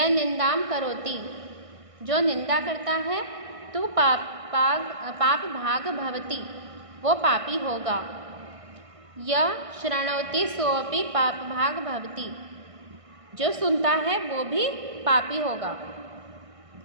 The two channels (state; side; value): late; left; 1.5 ms